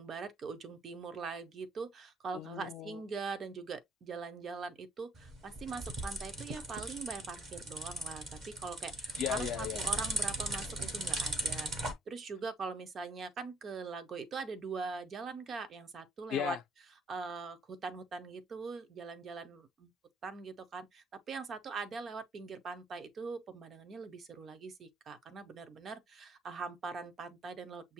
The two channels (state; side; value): normal; both; correlation 0.62